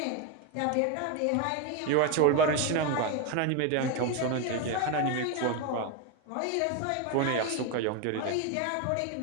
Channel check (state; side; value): different; both; correlation 0.02